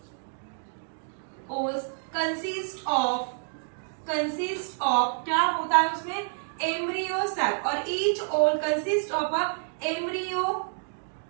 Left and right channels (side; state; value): left; silent; digital silence